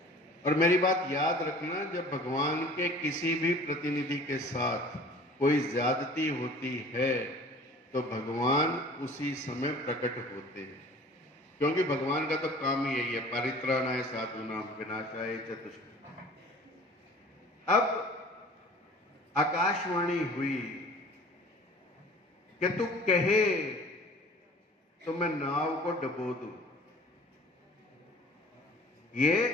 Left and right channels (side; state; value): both; normal; correlation 0.47